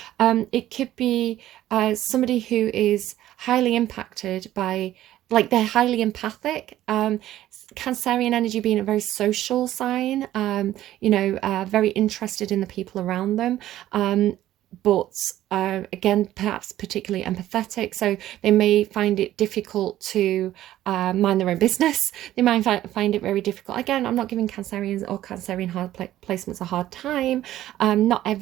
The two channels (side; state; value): left; quieter; 13.6 dB